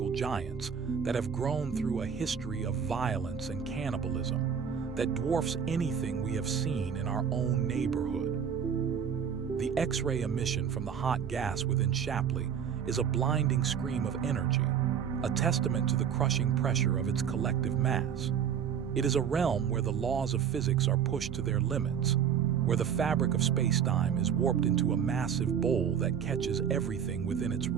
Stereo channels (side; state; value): left; quieter; 7.9 dB